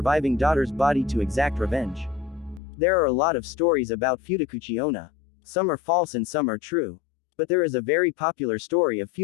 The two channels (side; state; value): right; drops out; at 2.6 s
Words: daughter's body to exact revenge. There are a lot of stories about Futakuchi onna. Some are false and some are true. But there is a very popular story of